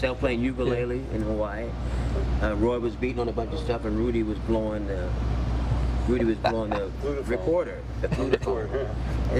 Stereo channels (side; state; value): both; identical; correlation 1.00